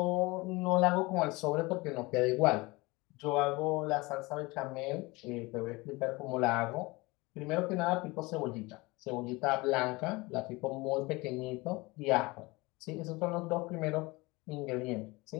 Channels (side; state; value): right; quieter; 23.4 dB